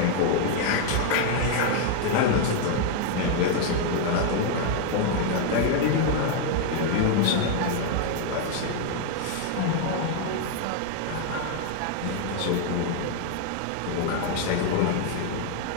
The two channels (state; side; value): different; both; correlation 0.00